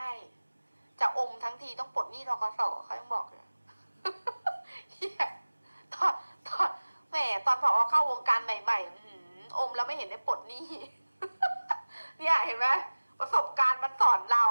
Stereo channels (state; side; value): inverted; both; correlation -1.00